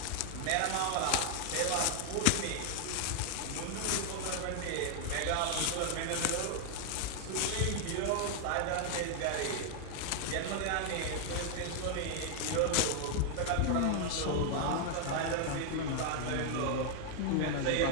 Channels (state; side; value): different; both; correlation 0.00